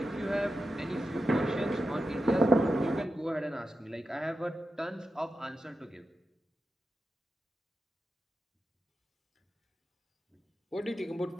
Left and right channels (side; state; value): both; normal; correlation 0.90